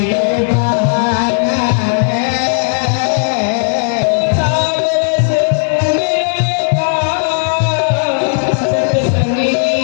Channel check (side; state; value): right; silent; 65 dB below the other